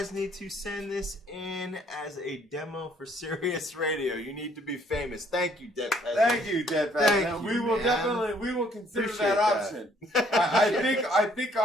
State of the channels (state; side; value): normal; both; correlation 0.63